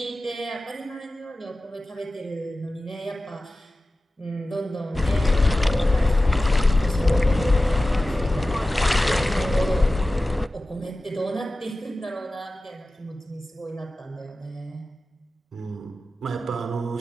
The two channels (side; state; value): both; normal; correlation 0.95